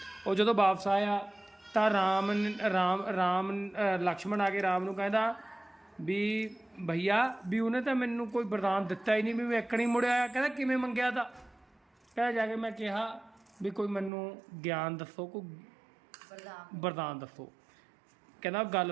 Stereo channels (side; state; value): left; drops out; at 14.1 s